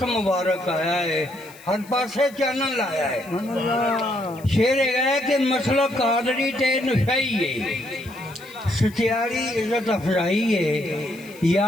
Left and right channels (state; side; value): noise; left; hiss, 23 dB below the sound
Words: मुबारक आया है, हर पासे चानन लाया है। शेर है कि मसला कादरी ते नशाई है, सचियारी इज्जत अफजाई है,